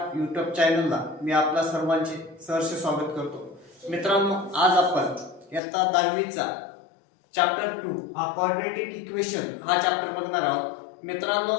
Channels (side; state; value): right; drops out; at 5.6 s